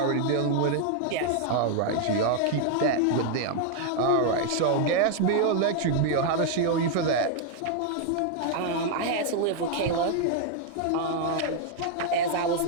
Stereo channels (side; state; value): both; different; correlation 0.00